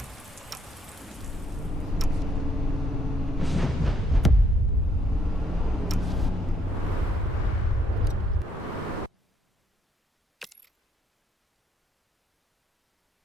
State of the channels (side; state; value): both; normal; correlation 0.69